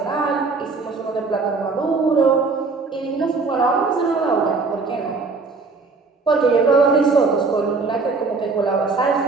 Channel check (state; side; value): quieter; left; 4.2 dB